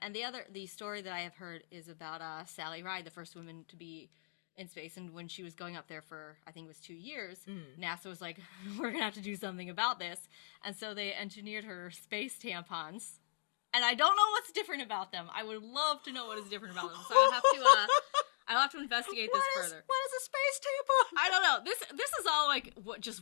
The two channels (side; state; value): right; silent; digital silence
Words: the story that I have heard is about Sally Ride, the first woman to be in space, and when she was going up there for, I think it was 2 years, NASA was like, we're going to have to do something about this. And so they engineered her space tampons. And I don't know what's different about them. I would love to know what is different about them. So I'll have to investigate this further. What is a space tampon? I don't know. This is all like